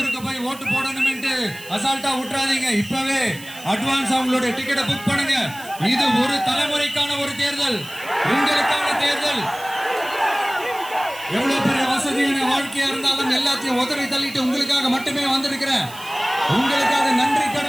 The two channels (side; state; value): right; noise; hiss, 17 dB below the sound